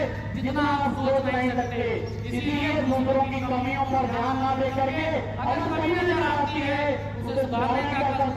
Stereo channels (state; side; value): identical; both; correlation 1.00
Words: जितना आप सोच नहीं सकते। इसलिए दूसरों की कमियों पर ध्यान न दे करके अगर कमी नजर आती है उसे सुधारने का